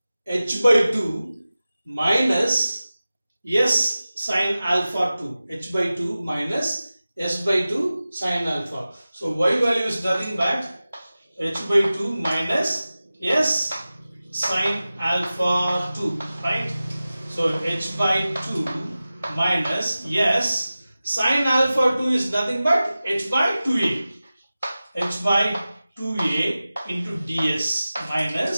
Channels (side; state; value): both; inverted; correlation -0.96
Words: H by 2 minus S sine alpha 2. H by 2 minus S by 2 sine alpha. So Y value is nothing but H by 2 minus S sine alpha 2, right? So H by 2 minus S sine alpha 2 is nothing but H by 2a. H by 2a into ds